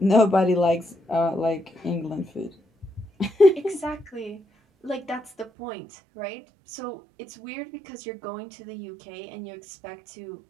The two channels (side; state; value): left; drops out; at 5.5 s